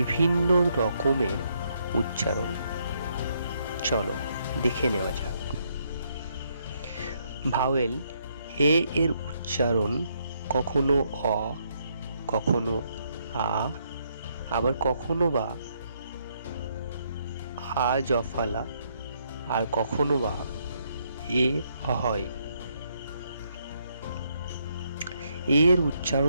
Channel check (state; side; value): inverted; both; correlation -0.74